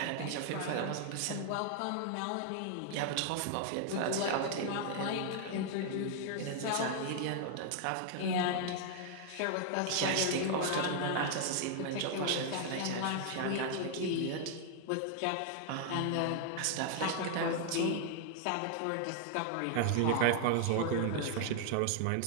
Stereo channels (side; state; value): both; different; correlation 0.00